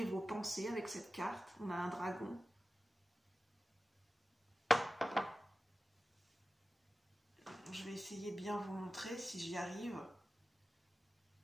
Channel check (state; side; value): normal; both; correlation 0.95